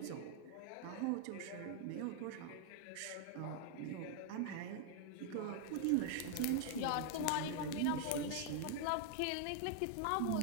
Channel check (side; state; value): both; different; correlation 0.00